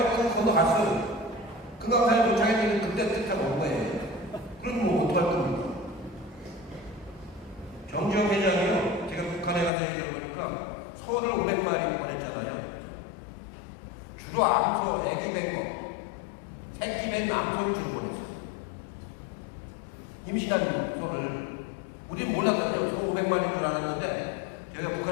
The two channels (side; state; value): right; drops out; at 9.7 s